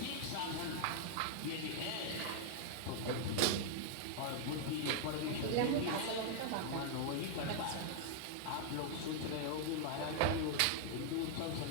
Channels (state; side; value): different; both; correlation 0.00